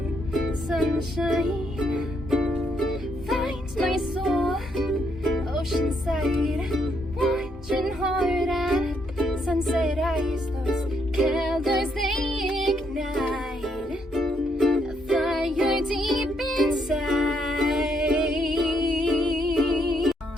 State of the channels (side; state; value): both; normal; correlation 0.74